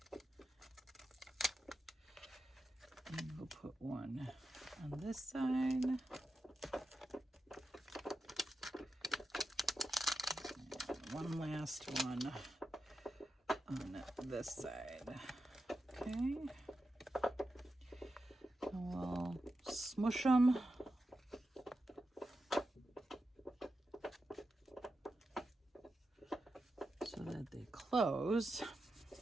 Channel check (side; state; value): both; normal; correlation 0.90